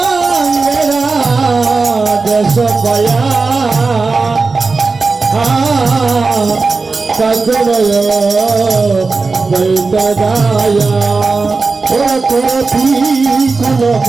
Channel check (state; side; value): quieter; left; 4.1 dB